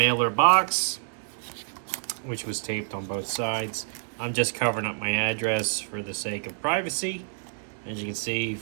box, which was taped on both sides. I'm just covering up my address for the sake of privacy. As you can see,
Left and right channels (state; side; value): silent; left; digital silence